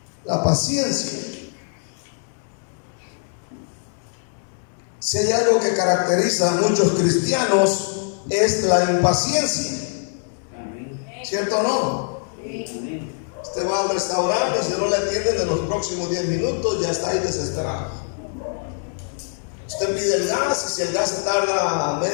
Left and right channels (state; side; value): silent; right; 59 dB below the other